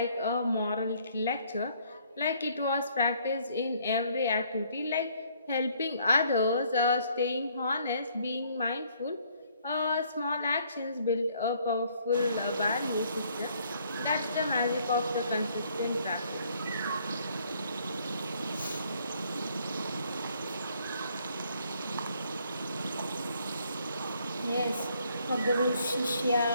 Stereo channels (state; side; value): inverted; both; correlation -0.65